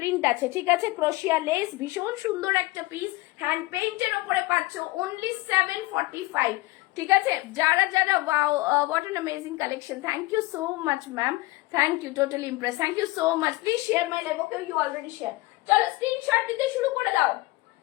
আছে। ঠিক আছে, ক্রোশিয়া লেস, ভীষণ সুন্দর একটা পিস, হ্যান্ড পেইন্টের উপরে পাচ্ছ, অনলি 745। ঠিক আছে, যারা যারা wow, what an amazing collection, thank you so much ma'am, thank you, totally impress, thank you so much. Please share my live. Okay, you already share. চলো স্ক্রিনশট দিতে শুরু করে দাও,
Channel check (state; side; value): quieter; right; 20.6 dB